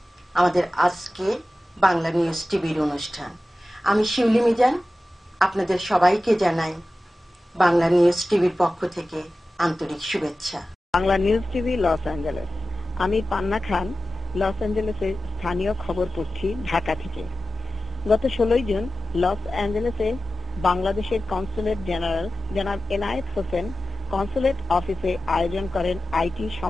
আমাদের আজকে বাংলা নিউজ টিভির অনুষ্ঠান। আমি শিউলি মিজান, আপনাদের সবাইকে জানাই বাংলা নিউজ টিভির পক্ষ থেকে আন্তরিক শুভেচ্ছা। Bangla news TV Los Angeles. আমি পান্না খান, লস অ্যাঞ্জেলেসের স্থানীয় খবর পড়ছি ঢাকা থেকে। গত 16 জুন লস অ্যাঞ্জেলেসে বাংলাদেশের কনসুলেট জেনারেল জনাব এনায়েত হোসেন কনসুলেট অফিসে আয়োজন করেন আইটি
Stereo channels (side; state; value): both; normal; correlation 0.94